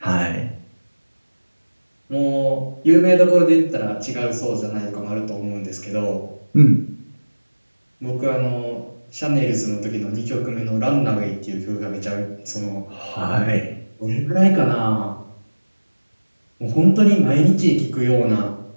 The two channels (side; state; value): both; inverted; correlation -1.00